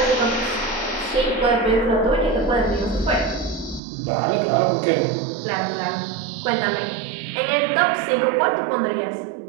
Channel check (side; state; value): left; drops out; at 3.8 s